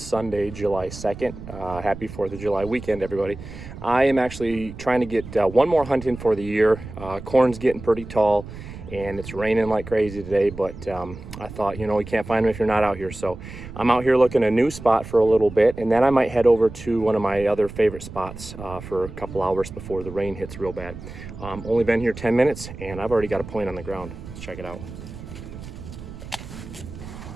July 2nd. Happy 4th of July weekend, everybody. I am actually trying to get one more hunt in for the year. Corn's getting pretty tall and it's raining like crazy today, but I thought, you can't find them if you're not out here. So I'm out here looking a new spot for a little bit, and then I might head over to one of my other favorite spots for a couple hours before the rain hits real bad. Only been here 10 minutes and I've already got a point on the ground. Let's check it out.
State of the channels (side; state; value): right; noise; rumble, 13 dB below the sound